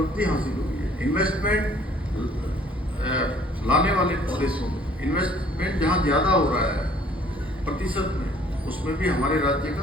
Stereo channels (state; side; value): normal; both; correlation 0.57